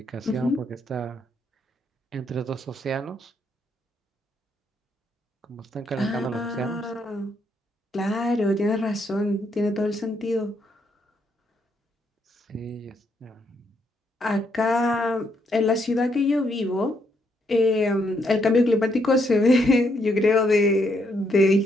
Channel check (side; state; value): both; normal; correlation 0.75